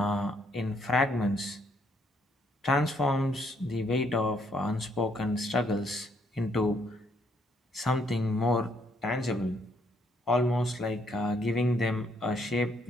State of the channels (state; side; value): normal; both; correlation 0.70